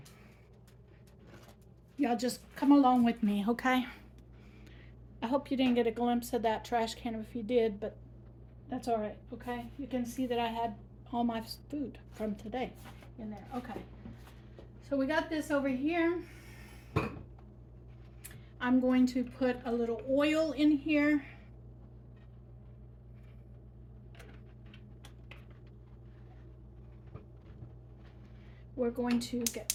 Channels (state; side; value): identical; both; correlation 1.00